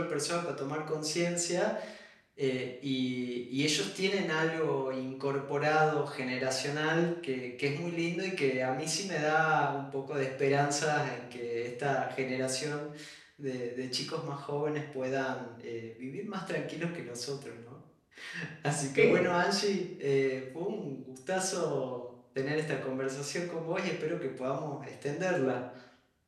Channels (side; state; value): both; identical; correlation 1.00